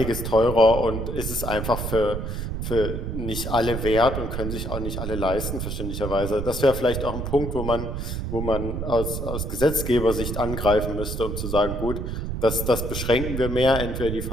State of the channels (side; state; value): right; noise; rumble, 4 dB below the sound